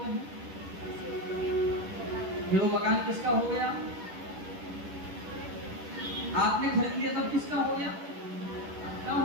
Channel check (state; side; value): late; left; 10 ms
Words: हैं? फिर वो मकान किसका हो गया? आपने खरीद लिया तब किसका हो गया? क्या